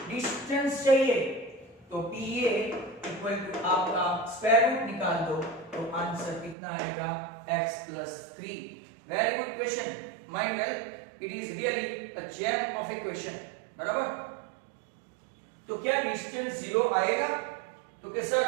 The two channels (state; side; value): drops out; left; at 6.6 s